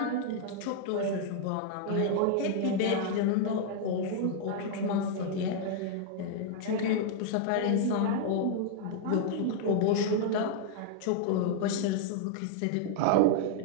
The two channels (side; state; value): both; different; correlation -0.01